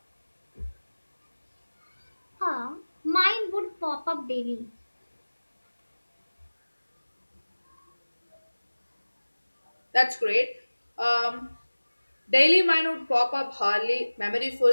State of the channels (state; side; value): inverted; both; correlation -1.00